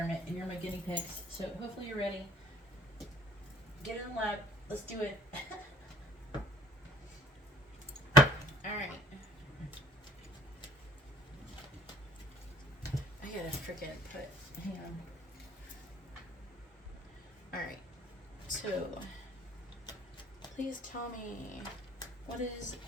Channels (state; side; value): normal; both; correlation 0.54